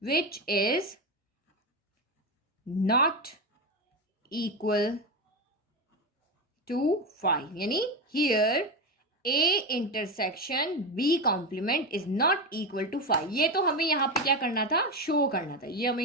which is not equal to 5, यानी here A intersection B complement is not equal to 5। ये तो हमें यहाँ पे क्या करना था, शो करना था, ये हमें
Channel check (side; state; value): both; normal; correlation 0.16